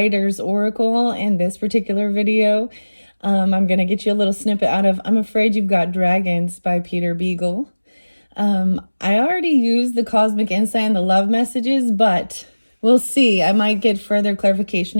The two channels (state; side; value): inverted; both; correlation -1.00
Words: Oracle in this particular video. I'm going to get you a little snippet out of I'm Afraid You've Got Dragons by Peter Beagle. I already used the Cosmic Insight and the love messages, but we'll see. I might get further clarification